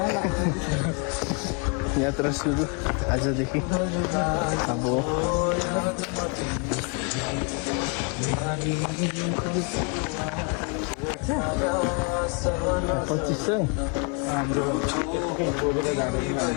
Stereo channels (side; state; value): right; quieter; 36.0 dB